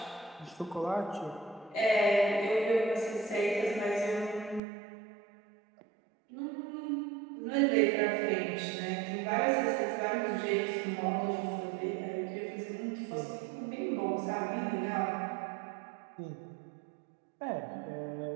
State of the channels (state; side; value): drops out; left; at 4.6 s